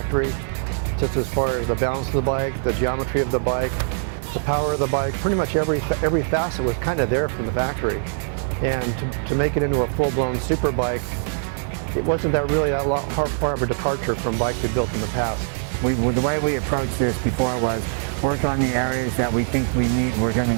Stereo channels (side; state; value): left; silent; digital silence